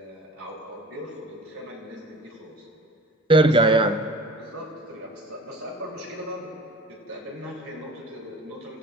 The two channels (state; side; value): normal; both; correlation 0.42